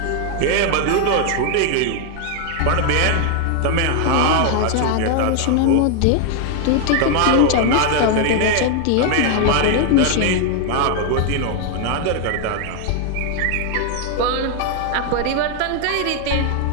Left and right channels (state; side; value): different; both; correlation 0.00